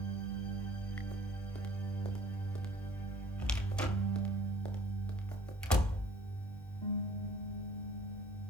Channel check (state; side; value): normal; both; correlation 0.53